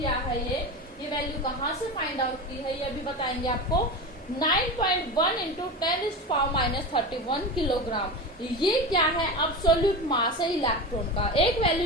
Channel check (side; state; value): both; normal; correlation 0.25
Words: है ये वैल्यू कहाँ से फाइंड आउट की है ये भी बताएंगे आपको। 9.1 इंटू 10⁻31 किलोग्राम। ये क्या है? एब्सोल्यूट मास है इलेक्ट्रॉन का। एक